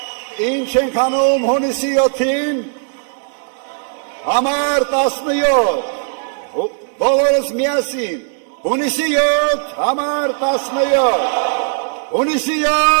ինչ ենք անում հունիսի 7-ին, Համար 17, բոլորս միասին, հունիսի 7, համար 17, հունիսի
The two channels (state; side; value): silent; left; 68 dB below the other